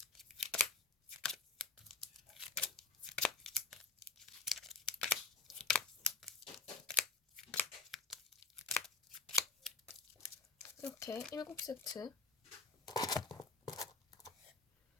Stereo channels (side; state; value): right; quieter; 3.9 dB